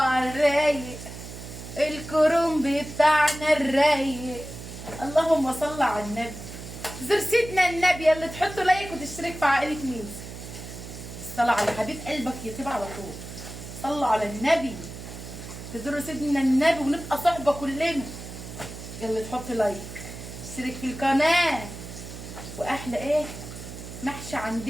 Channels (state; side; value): noise; right; hum, 12 dB below the sound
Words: الرايق، الكرنب بتاعنا الرايق. اللهم صل على النبي. زر سيدنا النبي اللي تحطوا لايك وتشترك في عائله ميزو. الصلاة على حبيب قلبك يطيب على طول. صلوا على النبي. تزوروا سيدنا النبي ونبقى صحبه كلنا. يلا تحط لايك، اشترك في القناه. واحلى ايه؟ محشي